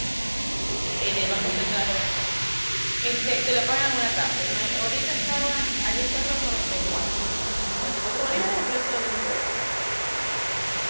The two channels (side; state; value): both; inverted; correlation -1.00